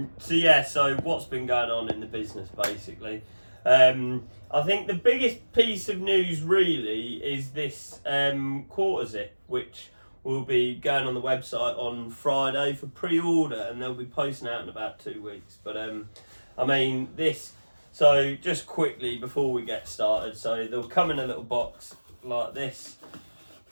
what's been going on in the business basically? I think the biggest piece of news really is this quarter zip, which will be going on the website on Friday for pre-order, and they'll be posting out in about 2 weeks. But I mean this. So just quickly before we get started, so they'll come in a little box like this.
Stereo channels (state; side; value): inverted; both; correlation -1.00